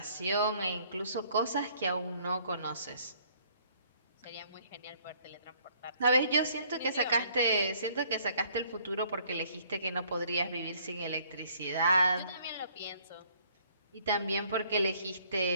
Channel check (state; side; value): inverted; both; correlation -0.61